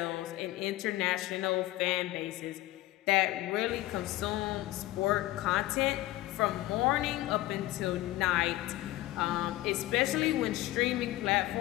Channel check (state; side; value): quieter; right; 16.9 dB